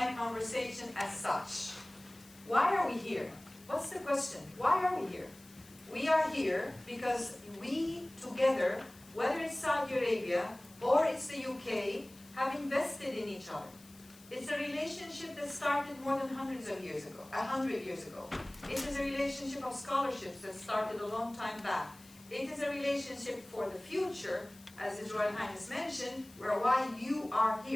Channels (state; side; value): noise; left; hiss, 23 dB below the sound